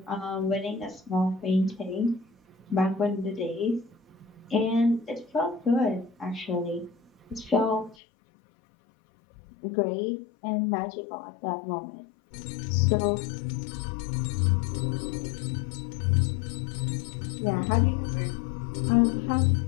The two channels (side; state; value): right; drops out; at 8.0 s